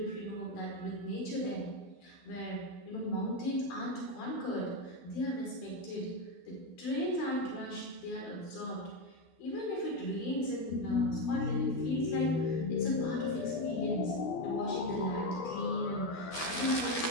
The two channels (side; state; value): right; late; 12 ms